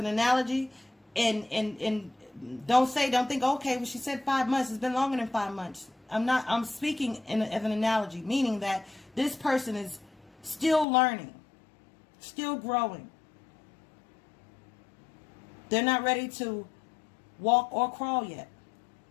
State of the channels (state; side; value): drops out; right; at 10.9 s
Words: analogy, and don't think, okay, well, she said 5 months. It's been longer than 5 months. I'm speaking as an analogy, meaning that this person is still learning, still growing. They're not ready to walk or crawl yet.